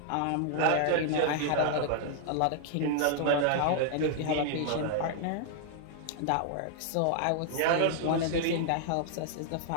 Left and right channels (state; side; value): different; both; correlation -0.01